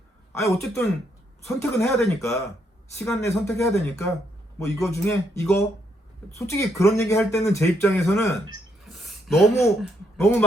어쨌든 선택은 해야 되니까 시간 내에 선택해야 되니까 뭐 이거 중에 이거 솔직히 그런 얘기 할 때는 제 입장에서는 너무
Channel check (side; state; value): both; normal; correlation 0.75